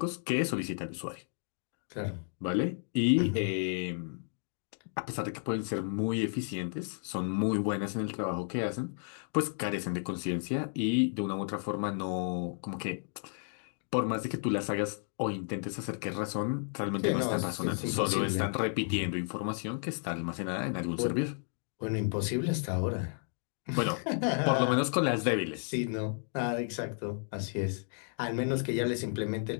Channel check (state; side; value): silent; right; 56 dB below the other